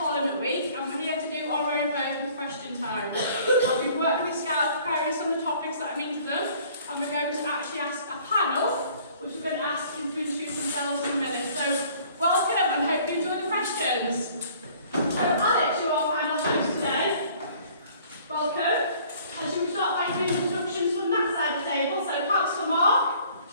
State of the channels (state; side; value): inverted; both; correlation -0.55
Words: Week, and we're here to do our own version of question time. We've worked with Scouts preparing some of the topics that I mean to them, and we're going to actually ask a panel, which we're going to ask them to introduce themselves in a minute. So, welcome, and hope you enjoy the questions. So, Alex, you're our panel host today. Welcome. And should we start by doing introductions from that side of the table? So, perhaps for Mark,